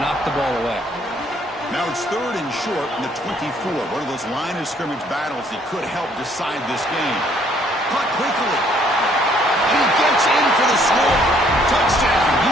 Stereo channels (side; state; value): both; normal; correlation 0.64